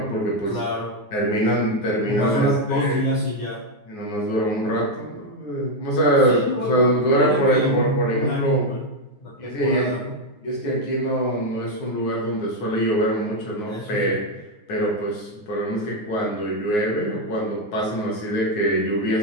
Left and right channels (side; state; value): right; late; 9.6 ms